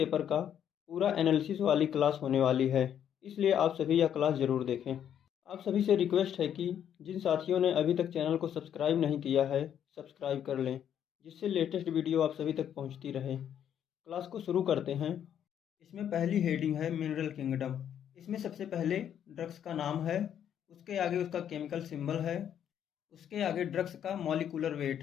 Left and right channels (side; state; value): right; quieter; 9.5 dB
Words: का पूरा एनालिसिस वाली क्लास होने वाली है, इसलिए आप सभी यह क्लास ज़रूर देखें। आप सभी से रिक्वेस्ट है कि जिन साथियों ने अभी तक चैनल को सब्सक्राइब नहीं किया है, सब्सक्राइब कर लें, जिससे लेटेस्ट वीडियो आप सभी तक पहुंचती रहे। क्लास को शुरू करते हैं। इसमें पहली हेडिंग है मिनरल किंगडम। इसमें सबसे पहले ड्रग्स का नाम है, उसके आगे उसका केमिकल सिंबल है, उसके आगे ड्रग्स का मॉलिक्यूलर वेट